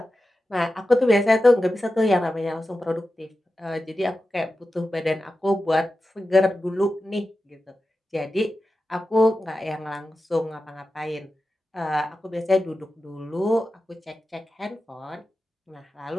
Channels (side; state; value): both; normal; correlation 0.92